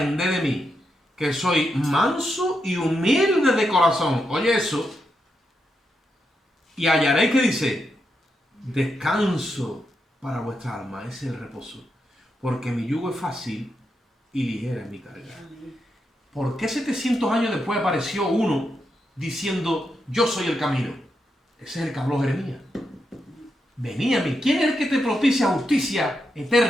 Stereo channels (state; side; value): normal; both; correlation 0.84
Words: de mí, que soy manso y humilde de corazón. Oye eso. Y hallaréis, que dice, descanso para vuestra alma. Ese es el reposo. Porque mi yugo es fácil y ligera es mi carga. ¿Por qué 700 años después apareció uno diciendo, yo soy el camino? Ese es el que habló Jeremías. Vení a mí. ¿Quién es el que te propicia justicia